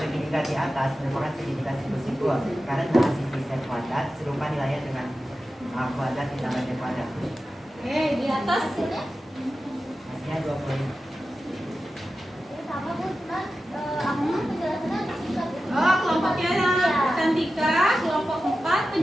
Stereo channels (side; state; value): both; normal; correlation 0.93